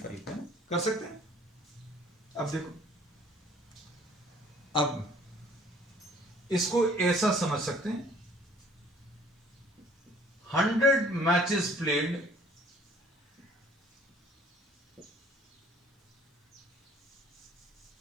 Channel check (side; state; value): both; normal; correlation 0.56